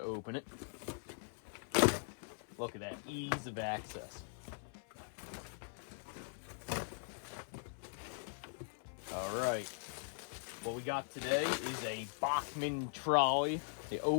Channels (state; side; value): silent; right; 50 dB below the other